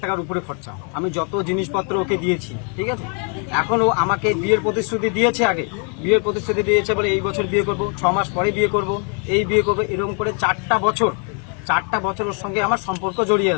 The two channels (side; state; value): right; quieter; 39.1 dB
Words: টাকার উপরে খরচা। আমি যত জিনিসপত্র ওকে দিয়েছি, ঠিক আছে। এখন ও আমাকে বিয়ের প্রতিশ্রুতি দিয়েছে, আগে বিয়ের প্রতিশ্রুতি দিয়েছে বলে এই বছর বিয়ে করব, 6 মাস পরে বিয়ে করব, এই বিয়ে করবো, এরকম করে 4টা বছর ওর সঙ্গে আমার সম্পর্ক জড়িয়ে